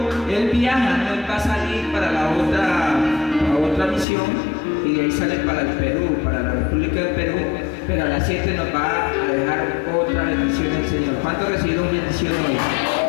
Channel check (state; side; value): drops out; right; at 4.0 s